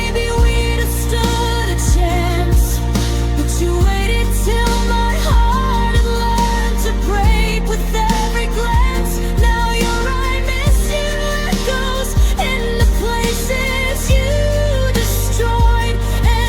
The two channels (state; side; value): identical; both; correlation 1.00